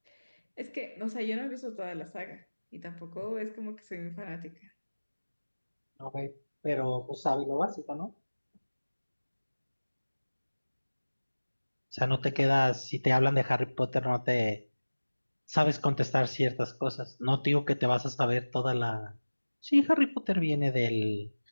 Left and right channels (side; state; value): both; inverted; correlation -1.00